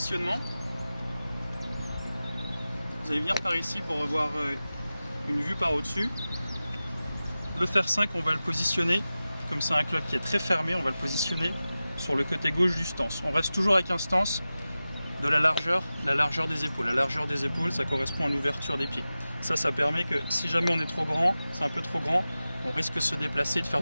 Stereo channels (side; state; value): both; inverted; correlation -0.95